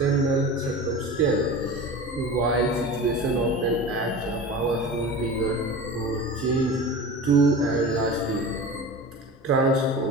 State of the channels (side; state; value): both; normal; correlation 0.33